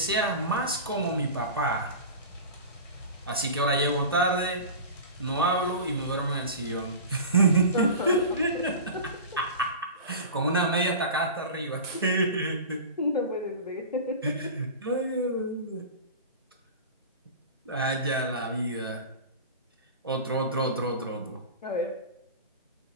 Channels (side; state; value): both; inverted; correlation -0.32